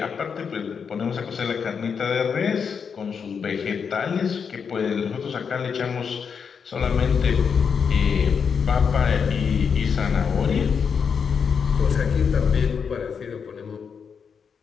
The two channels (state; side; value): quieter; right; 6.4 dB